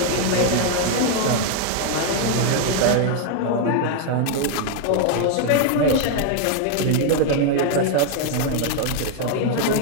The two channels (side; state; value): both; different; correlation 0.00